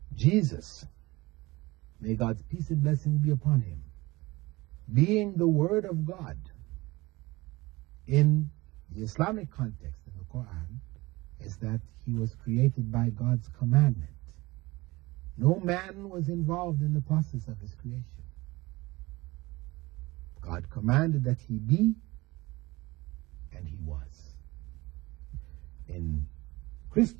Jesus, may God's peace and blessing be upon him, being the Word of God in the Islamic context in the Quran, is that he was created by God's commandment. No man was involved in the process of his creation. God commanded that he be, and he was. In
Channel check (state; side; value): quieter; left; 21.3 dB